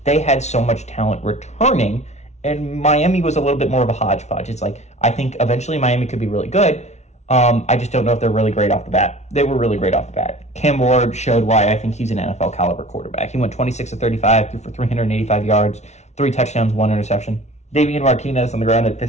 they had so much talent returning, and Miami was a little bit more of a hodgepodge. It's like, I think eventually Miami could be really good. I just don't know if they're really great off the bat. They were really great off the bat. Cam Ward showed why I think he's an NFL caliber quarterback. He went 26 of 35, threw for 385 yards, 3 touchdowns, 1 interception. Damian Martinez on the ground at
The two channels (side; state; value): right; late; 0.32 ms